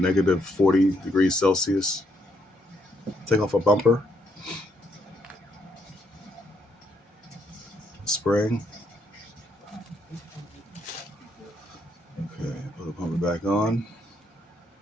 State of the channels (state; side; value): normal; both; correlation 0.74